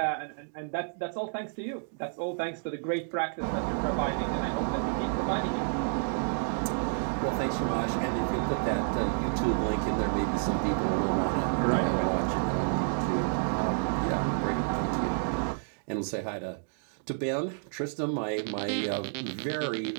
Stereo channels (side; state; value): left; silent; digital silence